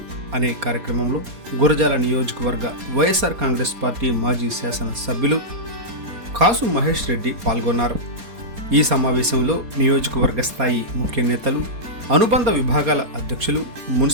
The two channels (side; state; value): left; late; 4.2 ms